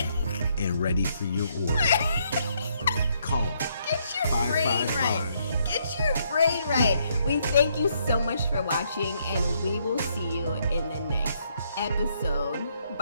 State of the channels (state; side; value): inverted; both; correlation -0.72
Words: and ready for your order. Call. Get your brain right. Get your brain right. We thank you so much for watching, and we will see you in the next episode.